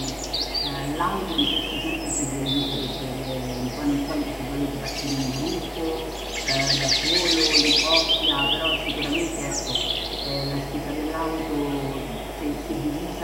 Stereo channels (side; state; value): both; identical; correlation 1.00